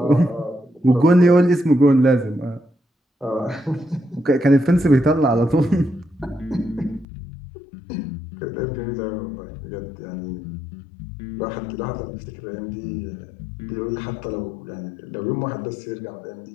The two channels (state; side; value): drops out; right; at 7.1 s